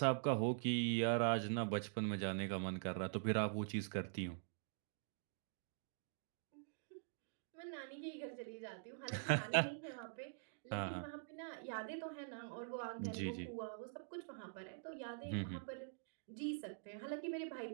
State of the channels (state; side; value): silent; left; digital silence